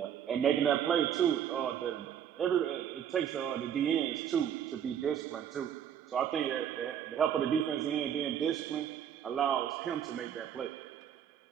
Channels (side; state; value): left; quieter; 9.2 dB